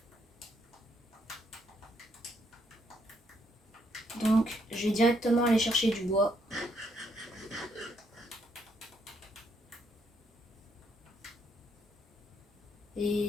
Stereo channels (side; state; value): both; normal; correlation 0.73